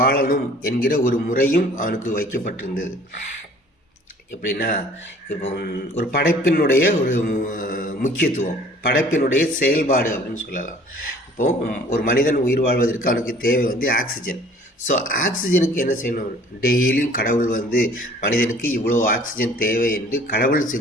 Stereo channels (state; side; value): normal; both; correlation 0.52